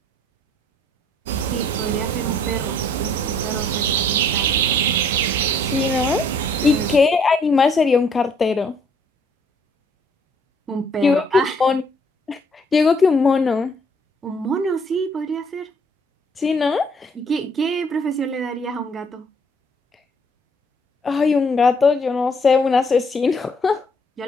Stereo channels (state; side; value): normal; both; correlation 0.63